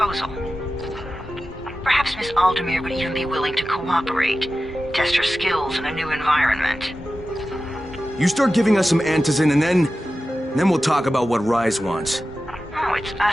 Perhaps Miss Aldemir would even be willing to cooperate, test her skills in a new environment. You start giving us some antizin and then we'll talk about what Rise wants. Oh, it's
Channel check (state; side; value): normal; both; correlation 0.94